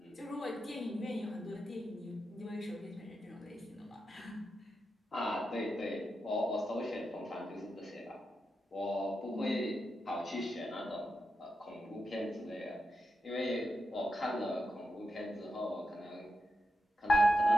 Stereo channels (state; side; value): normal; both; correlation 0.88